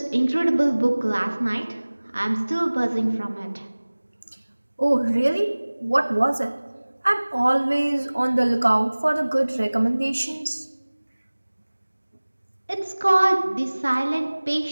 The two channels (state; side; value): inverted; both; correlation -1.00